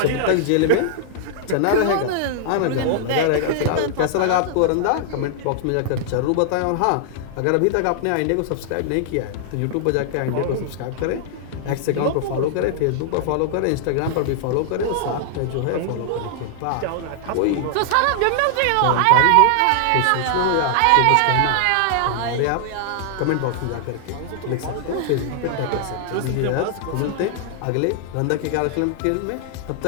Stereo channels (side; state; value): both; different; correlation -0.01